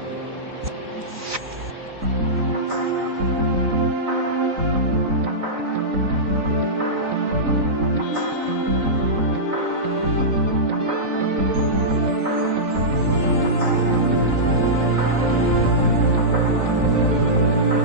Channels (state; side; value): late; left; 3.9 ms